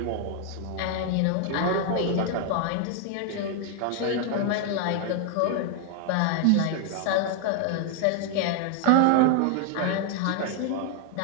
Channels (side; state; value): both; different; correlation 0.00